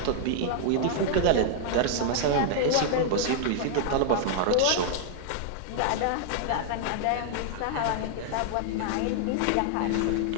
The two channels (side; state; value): both; different; correlation -0.01